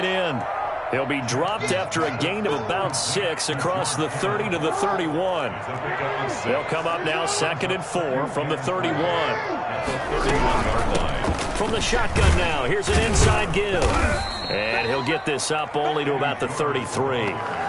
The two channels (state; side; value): identical; both; correlation 1.00